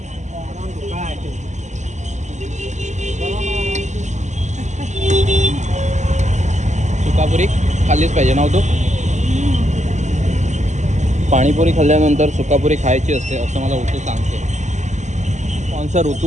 सुकापुरी खाल्लीच पाहिजे ना तू. पाणीपुरी खाल्ल्यानंतर सुकापुरी खायची असते असं मला ऋतू सांगते. कोणचा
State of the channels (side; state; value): left; late; 0.34 ms